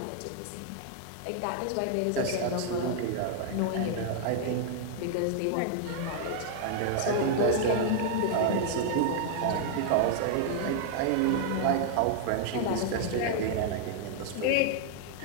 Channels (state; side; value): different; both; correlation -0.01